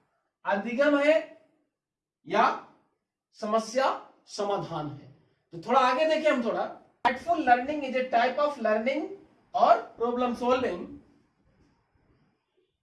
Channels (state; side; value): identical; both; correlation 1.00